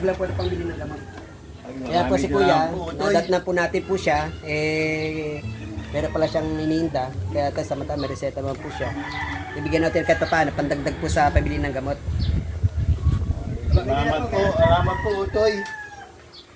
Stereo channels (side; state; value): both; identical; correlation 1.00